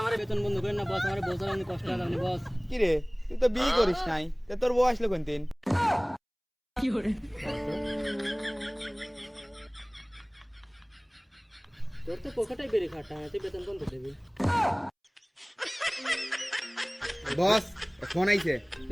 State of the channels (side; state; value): both; identical; correlation 1.00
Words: আমার বেতন বন্ধ করেন না বস, আমার বছর আমি কষ্ট হবে বস। কি রে, তুই তো বিয়ে করিস নাই, তা তোর বউ আসলো কোন দিন? কি করে তোর তো পকেটে বেরিয়ে খাটা, তুই বেতন বন্ধ দেবি? বস ফোন আইছে।